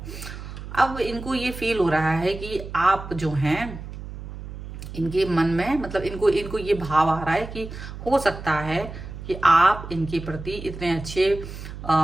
अब इनको ये फील हो रहा है कि आप जो हैं इनके मन में, मतलब इनको ये भाव आ रहा है कि हो सकता है कि आप इनके प्रति इतने अच्छे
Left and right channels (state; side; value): noise; right; hum, 11 dB below the sound